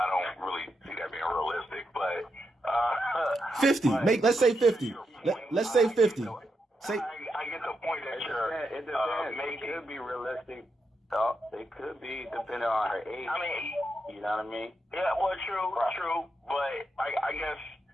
don't really see that being realistic, but 50. Let's say 50. Let's say 50. I get the point that you're. It depends. Maybe it could be realistic. It could be depending on her age. I mean, you know what I mean? Yeah, well, true. But I guess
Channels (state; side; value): normal; both; correlation 0.84